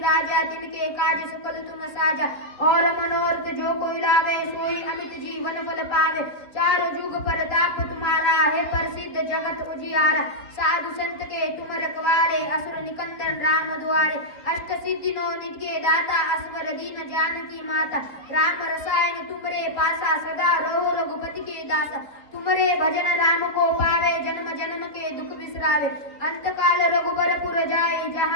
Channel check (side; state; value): right; late; 3.9 ms